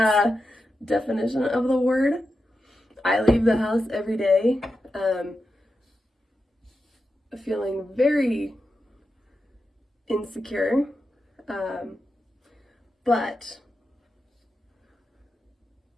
definition of the word. I leave the house every day feeling very insecure, but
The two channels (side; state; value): both; normal; correlation 0.89